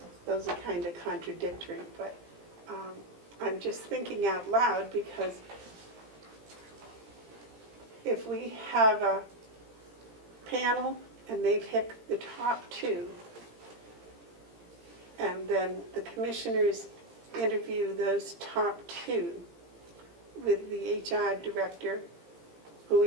Those are kind of contradictory, but I'm just thinking out loud, because if we have a panel and they pick the top two, and then the commissioners interview those top two with the HR director, who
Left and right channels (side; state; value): left; late; 18 ms